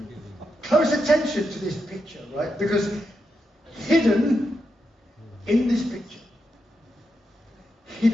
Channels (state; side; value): normal; both; correlation 0.85